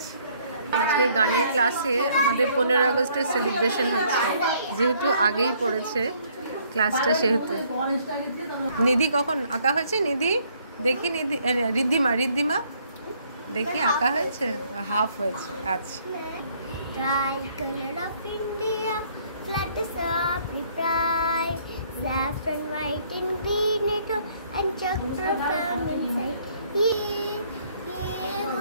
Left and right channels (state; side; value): inverted; both; correlation -0.65